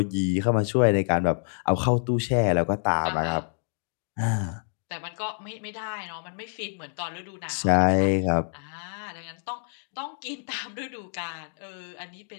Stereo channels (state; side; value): silent; right; 60 dB below the other